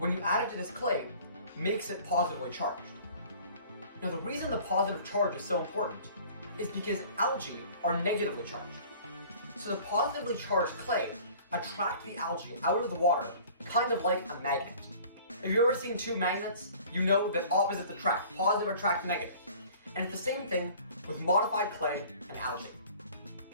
you add it to this clay, makes it positively charged. Now, the reason the positive charge is so important is because algae are negatively charged. So the positively charged clay attracts the algae out of the water, kind of like a magnet. If you've ever seen two magnets, you know that opposites attract. Positive attract negative. And it's the same thing with modified clay and algae.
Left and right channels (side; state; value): both; inverted; correlation -0.48